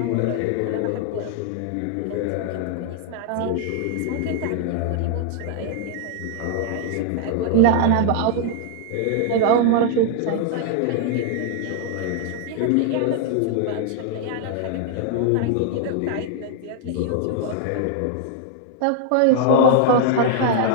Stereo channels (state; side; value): different; both; correlation 0.00